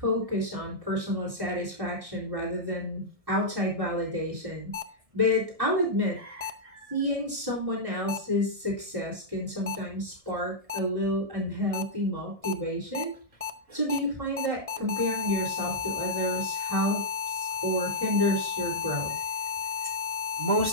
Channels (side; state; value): left; late; 1.7 ms